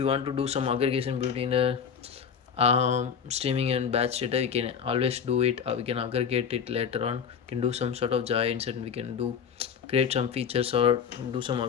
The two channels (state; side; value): quieter; right; 7.0 dB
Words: want to do some aggregation between the streaming and batch data, we can always do it. We can aggregate it later on. We can do some sort of joins, and we can create some features or do some